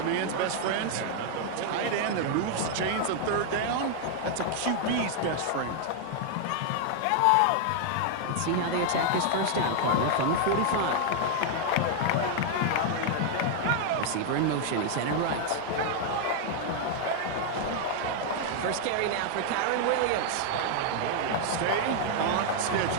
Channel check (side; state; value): both; different; correlation 0.00